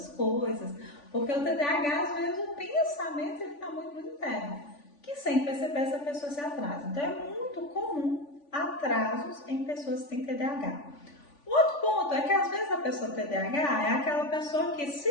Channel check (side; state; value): right; late; 3.5 ms